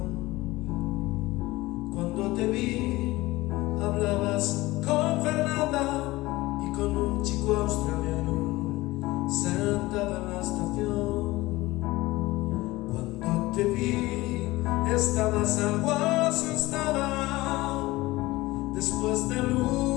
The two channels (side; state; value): right; quieter; 19.5 dB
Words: Cuando te vi, hablabas con Fernanda y con un chico australiano sentado en la estación. Cuando te vi, estabas algo asustada después del